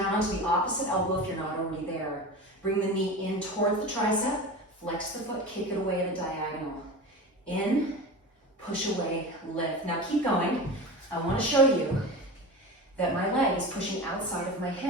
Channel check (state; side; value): normal; both; correlation 0.29